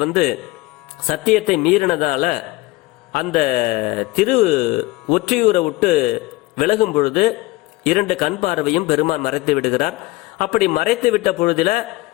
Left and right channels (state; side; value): quieter; right; 20.4 dB